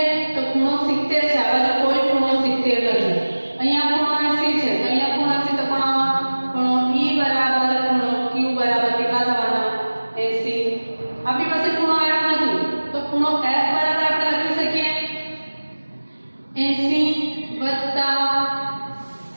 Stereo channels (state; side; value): inverted; both; correlation -1.00